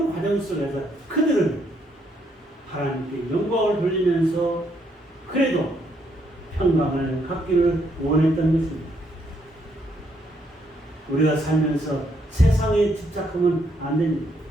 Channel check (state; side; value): normal; both; correlation 0.73